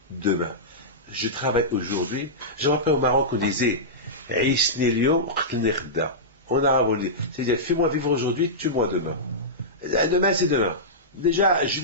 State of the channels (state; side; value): normal; both; correlation -0.14